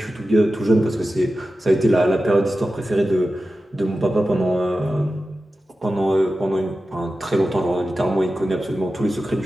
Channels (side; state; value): both; normal; correlation 0.93